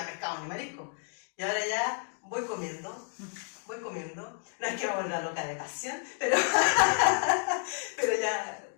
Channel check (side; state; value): right; silent; 55 dB below the other